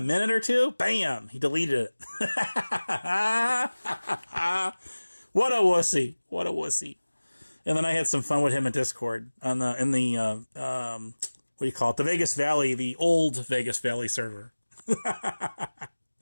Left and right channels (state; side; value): inverted; both; correlation -1.00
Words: minute or two, bam, he deleted it. What a wussy. What a wussy. And then I had some fun with him in Discord in the what do you call it? The Vegas Valley, the old Vegas Valley server.